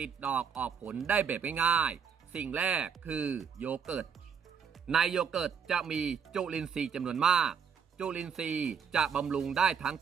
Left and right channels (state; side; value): quieter; left; 7.0 dB